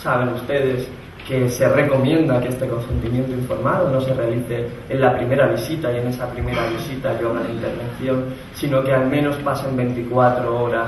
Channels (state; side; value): identical; both; correlation 1.00